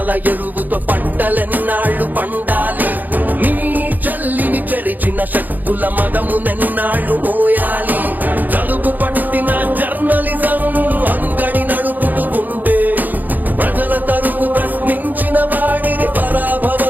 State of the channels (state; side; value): late; left; 0.084 ms